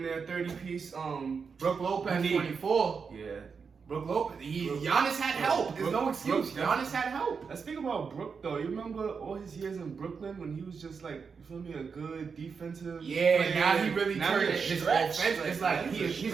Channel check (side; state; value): left; quieter; 5.6 dB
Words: near 30 piece. Brooke Lopez, Need- 24. Yeah. Brooke Lopez. Giannis had help. There's no excuse. Giannis had help. Let's speak about Brook though. You remember all his years in Brooklyn when he was just like, you feel me, a good defensive. Yeah, player. now he really Now turned he a his stretch. offense. It's like he's a